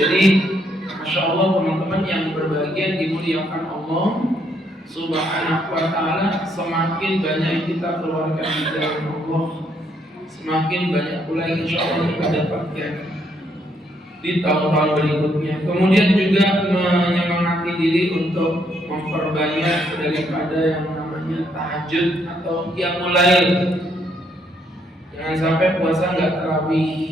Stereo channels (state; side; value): normal; both; correlation 0.72